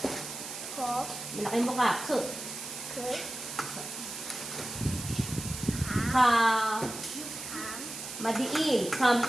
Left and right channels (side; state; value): right; noise; hiss, 9 dB below the sound